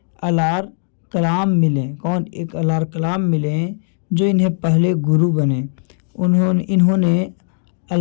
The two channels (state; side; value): silent; right; 62 dB below the other